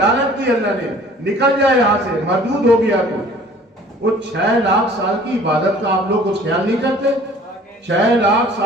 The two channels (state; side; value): normal; both; correlation 0.51